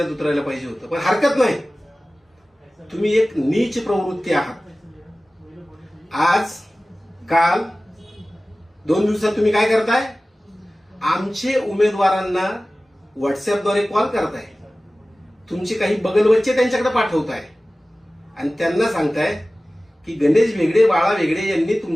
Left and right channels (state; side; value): normal; both; correlation 0.97